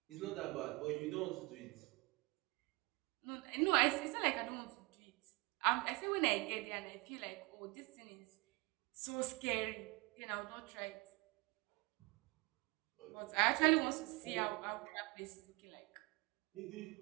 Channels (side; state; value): left; quieter; 25.4 dB